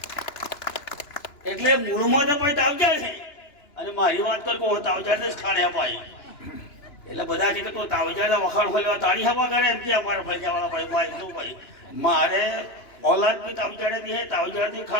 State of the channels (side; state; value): right; late; 2.9 ms